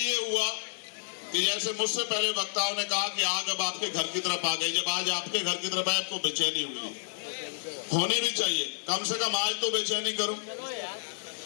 हुआ कि जैसे मुझसे पहले वक्ताओं ने कहा कि आग अब आपके घर की तरफ आ गई। जब आज आपके घर की तरफ आए, आपको बेचैनी हुई, होनी भी चाहिए, कम से कम आज तो बेचैनी करो।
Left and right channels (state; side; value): silent; right; 58 dB below the other